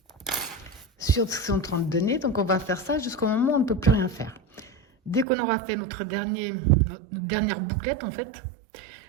sur ce qu'ils sont en train de donner. Donc on va faire ça jusqu'au moment où on ne peut plus rien faire. Dès qu'on aura fait notre dernière bouclette, en fait,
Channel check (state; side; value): drops out; left; at 5.2 s